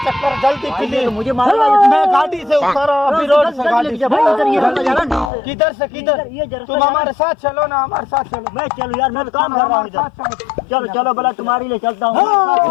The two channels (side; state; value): right; drops out; at 5.2 s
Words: जल्दी प्लीज। तो मुझे मारेगा। मैं गाड़ी से उतरा, अभी रोड से गाड़ी से। किधर से किधर? तुम हमारे साथ चलो ना, हमारे साथ चलो। मैं चलो यार, मैं काम कर रहा हूँ इधर। चलो चलो भला तुम्हारे लिए चलता हूँ।